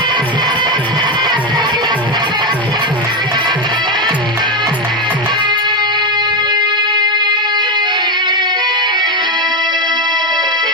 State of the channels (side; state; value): both; normal; correlation 0.11